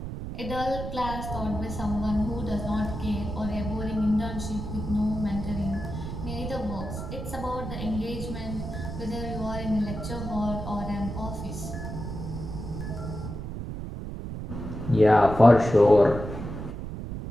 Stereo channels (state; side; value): noise; right; rumble, 7 dB below the sound